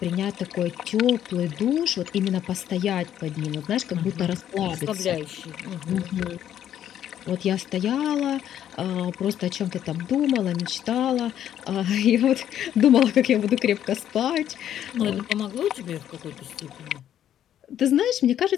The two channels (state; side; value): quieter; right; 10.6 dB